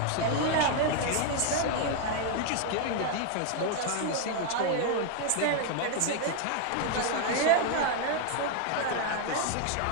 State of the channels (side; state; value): both; different; correlation 0.00